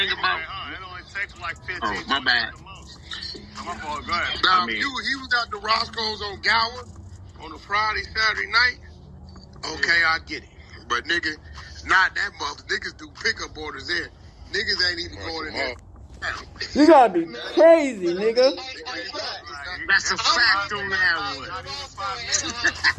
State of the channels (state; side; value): identical; both; correlation 1.00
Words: about... It only takes like 15 Oh, my bad. My fault, go ahead. Now, he was at the Roscoe's on Gower on a Friday, Saturday night. Okay, I get it. But nigga, not that mother. Niggas do pickup orders there. Niggas ain't even going in there. You gotta be crazy, nigga. That's a fact on that one.